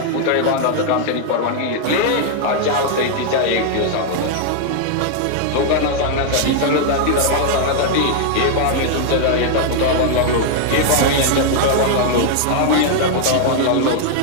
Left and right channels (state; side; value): different; both; correlation 0.00